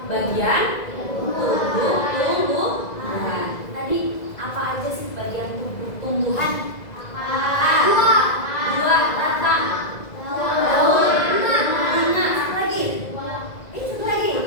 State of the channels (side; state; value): right; late; 2.0 ms